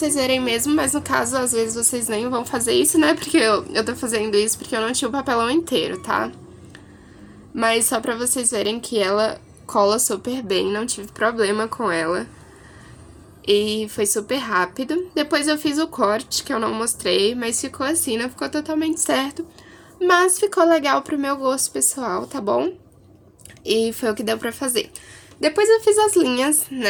verem mesmo, mas no caso, às vezes vocês nem vão fazer isso, né? Porque eu tô fazendo isso porque eu não tinha o papelão inteiro, tá? Mas só pra vocês verem que ela cola super bem, não tive problema com ela. E foi super rápido. Depois eu fiz o corte, que eu não mostrei, mas ficou assim, não ficou totalmente certo. Mas ficou legal pro meu gosto pessoal, tá bom? E foi o que deu pra fazer. Depois eu fiz as linhas,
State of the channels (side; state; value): both; identical; correlation 1.00